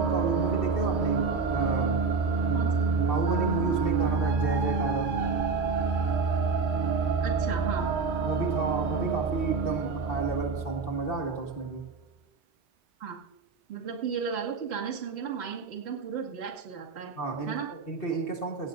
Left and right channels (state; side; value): quieter; left; 4.5 dB